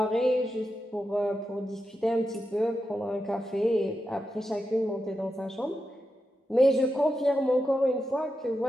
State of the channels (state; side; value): normal; both; correlation 0.88